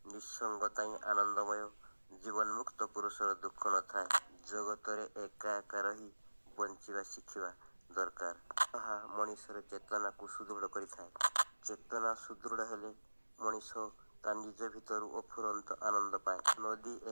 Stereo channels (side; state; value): both; inverted; correlation -1.00